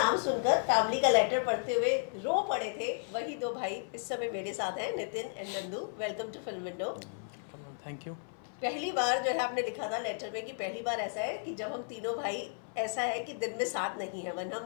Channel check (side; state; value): right; silent; 55 dB below the other